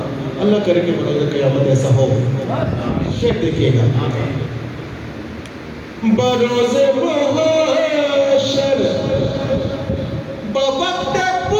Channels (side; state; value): both; identical; correlation 1.00